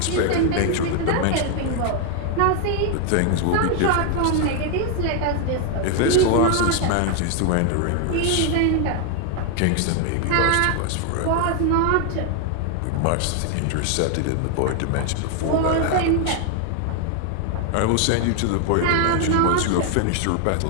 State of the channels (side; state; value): both; different; correlation 0.00